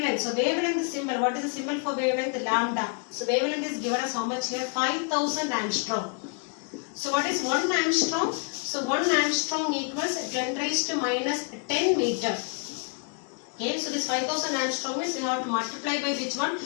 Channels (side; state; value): right; quieter; 36.7 dB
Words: So wavelength symbol. What is the symbol for wavelength? Lambda. So wavelength is given as how much here? 5000 angstrom. So what is 1 angstrom? So 1 angstrom equals 10 raised to minus 10 meter. Okay, so this 5000 angstrom means we have to multiply by which one?